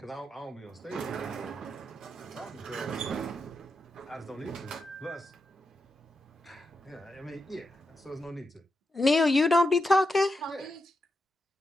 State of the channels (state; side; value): normal; both; correlation 0.86